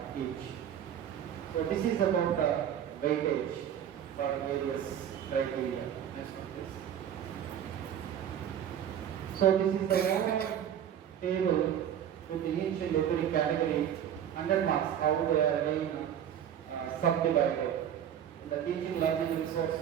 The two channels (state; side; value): quieter; left; 9.7 dB